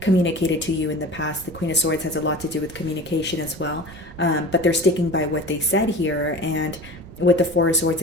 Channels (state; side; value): noise; right; rumble, 17 dB below the sound